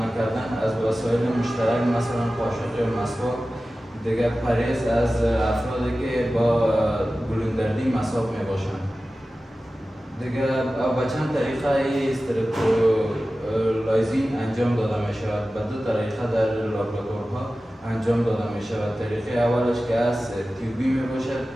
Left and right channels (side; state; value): both; normal; correlation 0.95